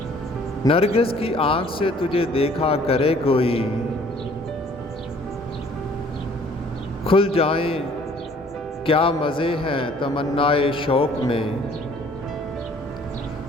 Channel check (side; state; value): both; normal; correlation 0.56